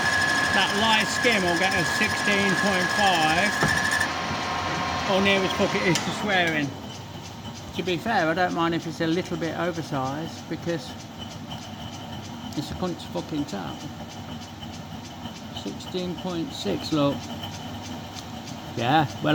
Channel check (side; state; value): both; identical; correlation 1.00